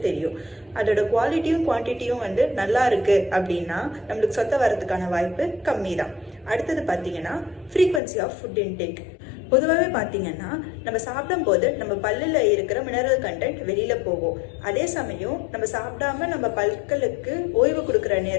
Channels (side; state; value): right; drops out; at 8.0 s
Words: தெரியும். அதோட குவாலிட்டியும் குவான்டிட்டியும் நல்லா இருக்குது அப்படின்னா நம்மளுக்கு சொத்தை வரதுக்கான வாய்ப்பு கம்மி தான். அடுத்தது பார்த்தீங்கன்னா ஃப்ரீக்வன்சி ஆஃப் ஃபுட் இன்டேக். பொதுவாகவே பார்த்தீங்கன்னா நம்ம சாப்பிடும்போது நம்ம பல்லில் இருக்கிற மினரல் கண்டென்ட் வெளியில் போகும். அதே சமயம் நம்ம சாப்பிடாம நம்ம பற்களுக்கு ஓய்வு கொடுக்குற